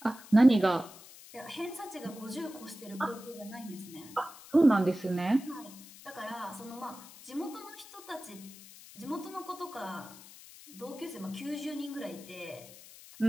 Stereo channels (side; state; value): left; noise; hiss, 18 dB below the sound